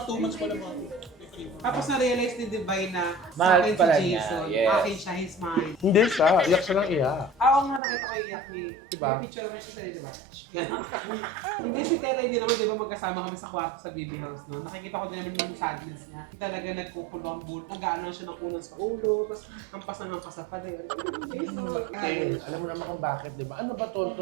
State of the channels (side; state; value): left; drops out; at 7.8 s